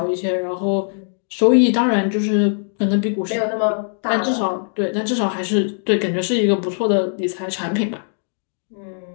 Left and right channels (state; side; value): silent; right; digital silence